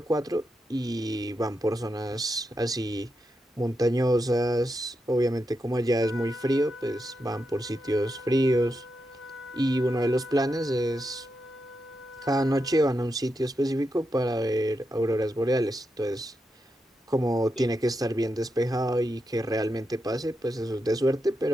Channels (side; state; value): both; normal; correlation 0.86